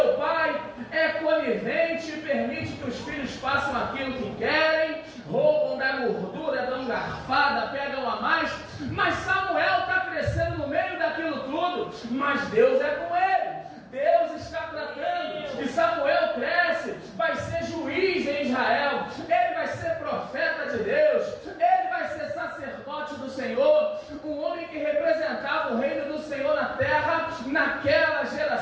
pai é conivente e permite que os filhos façam aquilo que querem, roubam da gordura, dão garfada, pegam a mais, mas Samuel está crescendo no meio daquilo tudo, mas Deus é com ele. Deus está tratando, e Samuel cresce, vai ser juiz em Israel, ele vai ser profeta de Deus, ele vai ser sacerdote do Senhor, um homem que representava o reino do Senhor na terra, naquela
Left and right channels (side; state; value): both; identical; correlation 1.00